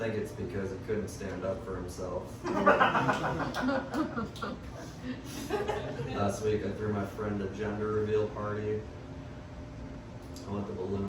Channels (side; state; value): both; identical; correlation 1.00